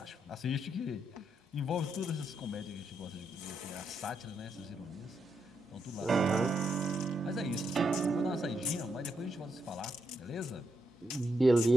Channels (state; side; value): normal; both; correlation 0.80